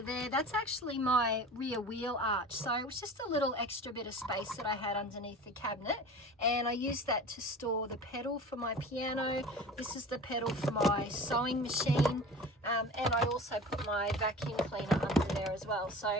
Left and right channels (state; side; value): normal; both; correlation 0.37